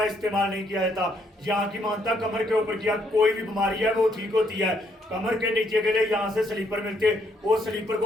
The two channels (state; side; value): normal; both; correlation 0.72